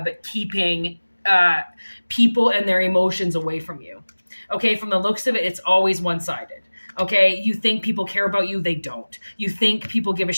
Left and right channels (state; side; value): inverted; both; correlation -1.00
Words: keeping people and their emotions away from you. Okay, from the looks of it, it's always one-sided. Okay, you think people care about you, they don't. You think people give a